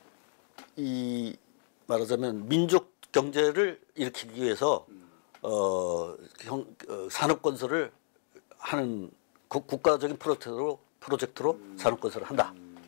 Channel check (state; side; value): silent; right; digital silence